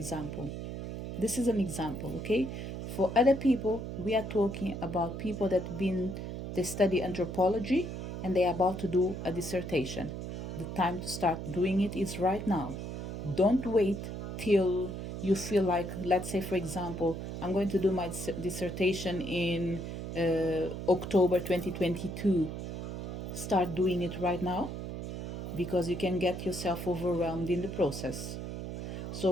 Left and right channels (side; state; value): right; noise; hum, 6 dB below the sound